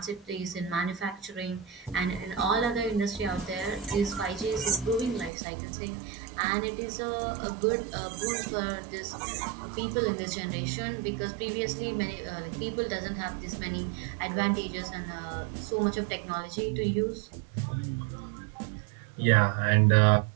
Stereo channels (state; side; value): drops out; left; at 5.3 s